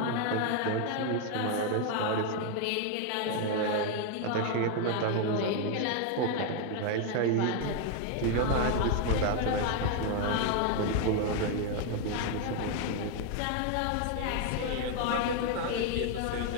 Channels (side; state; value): both; different; correlation 0.01